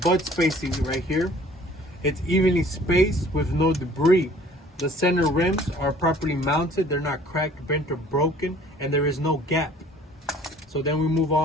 spacing right here. It's evenly spaced with no debris. The center rims are properly mounted. They're not cracked, bent, or broken, and there is no gap. So then we move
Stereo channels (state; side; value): normal; both; correlation 0.53